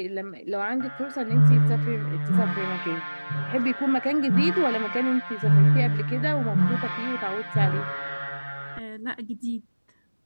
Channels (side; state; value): both; inverted; correlation -1.00